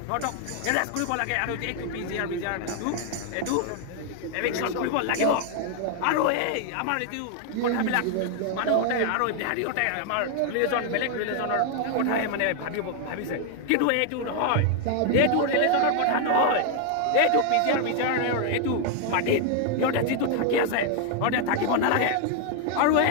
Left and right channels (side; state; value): both; different; correlation 0.00